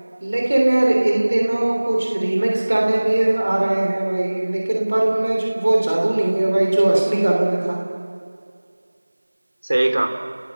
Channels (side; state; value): both; inverted; correlation -1.00